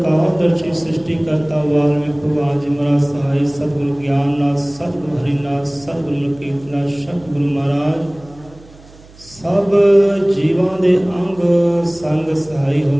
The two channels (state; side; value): noise; right; hum, 23 dB below the sound